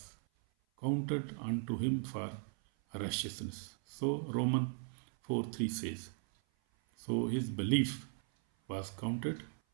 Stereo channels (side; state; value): left; silent; 53 dB below the other